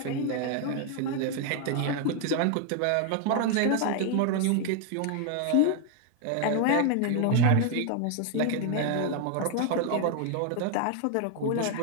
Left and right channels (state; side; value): different; both; correlation 0.01